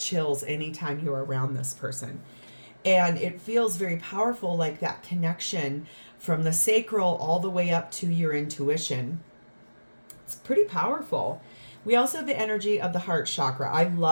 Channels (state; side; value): inverted; both; correlation -1.00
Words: anytime you're around this person. And it feels very powerful, like that connection from the sacral all the way up to your intuition. It's pretty powerful. We also have the energy of the heart chakra. I